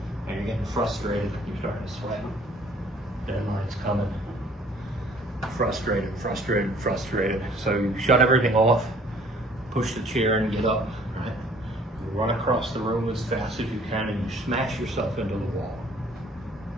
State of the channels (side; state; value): both; normal; correlation 0.56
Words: and you're getting frustrated. You're starting to sweat. Deadline's coming. Frustrated, frustrated, frustrated. So you shut everything off, push the chair and get up, right? You run across the room as fast as you can, and you smash yourself into the wall.